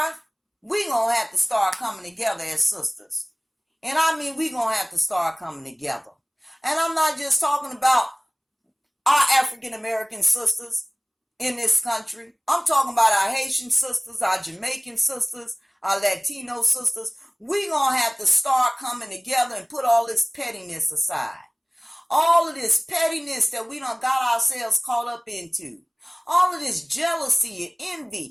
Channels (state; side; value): identical; both; correlation 1.00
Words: we're going to have to start coming together as sisters. And I mean, we're going to have to start coming together. And I'm not just talking about our African American sisters in this country. I'm talking about our Haitian sisters, our Jamaican sisters, our Latino sisters. We're going to have to start coming together and put all this pettiness aside. All of this pettiness that we done got ourselves caught up into. All of this jealousy and